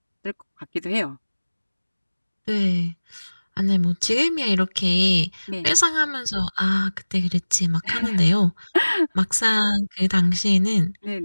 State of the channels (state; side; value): inverted; both; correlation -1.00